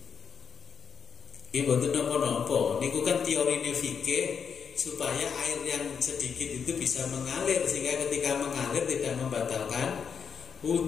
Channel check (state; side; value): quieter; right; 6.7 dB